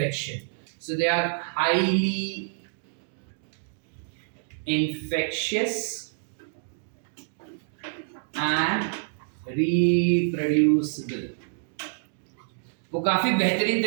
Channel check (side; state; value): left; silent; digital silence